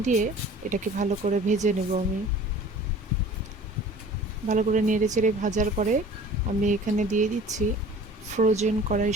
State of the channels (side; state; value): both; normal; correlation 0.46